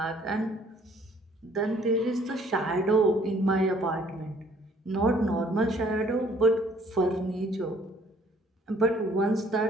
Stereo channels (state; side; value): normal; both; correlation 0.59